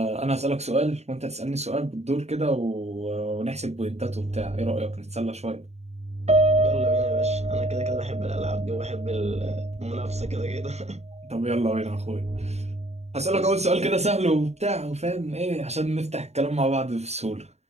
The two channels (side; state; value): left; late; 0.32 ms